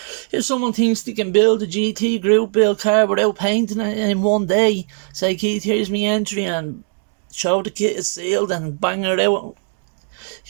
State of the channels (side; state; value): left; silent; 55 dB below the other